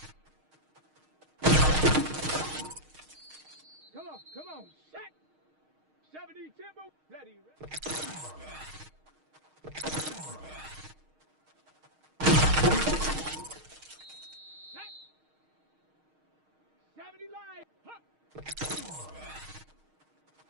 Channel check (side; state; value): left; late; 6.4 ms